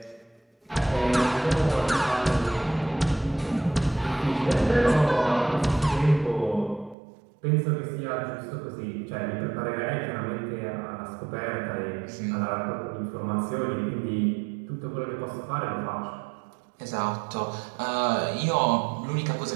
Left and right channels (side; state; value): left; drops out; at 7.0 s